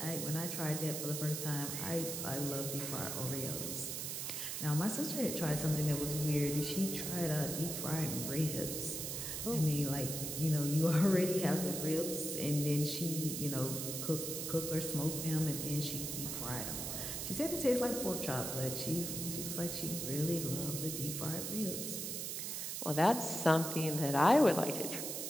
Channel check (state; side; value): noise; right; hiss, 4 dB below the sound